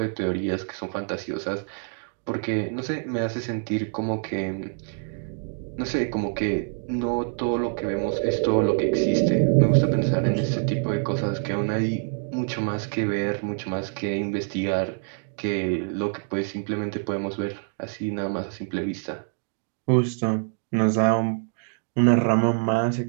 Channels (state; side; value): silent; left; 56 dB below the other